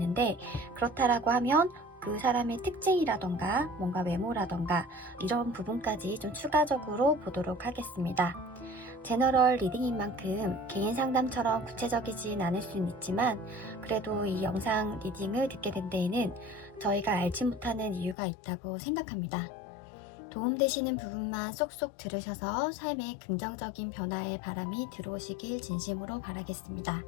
그렇다라고 하면 그 사람의 특징이라던가 뭔가 외모라던가 이런 부분까지 좀 추가적으로 보도록 하겠습니다. 제너럴 리딩인 만큼 개인 상담처럼 구체적이진 않을 수는 있지만, 그래도 이 영상 리딩을 듣게 된 데에는 저희가 알지 못하는 이유가 있다고 생각합니다. 도움되시는 부분만 쏙쏙 들으셔서 삶에 긍정적인 변화의 바람이 들어오시길 진심으로 바라겠습니다.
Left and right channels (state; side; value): drops out; right; at 18.2 s